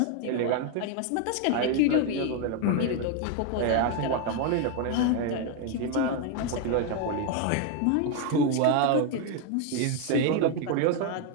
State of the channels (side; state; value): both; different; correlation 0.01